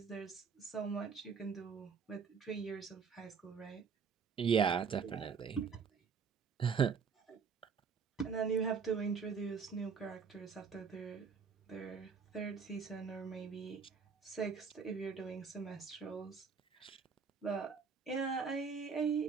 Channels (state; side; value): quieter; left; 5.9 dB